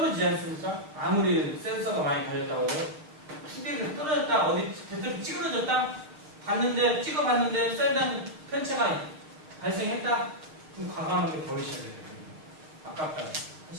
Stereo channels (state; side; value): late; left; 6.5 ms